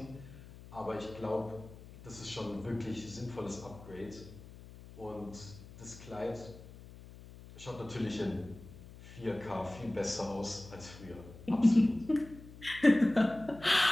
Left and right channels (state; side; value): noise; left; hum, 17 dB below the sound